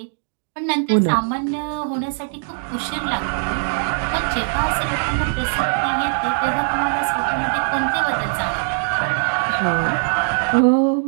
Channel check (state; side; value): silent; left; digital silence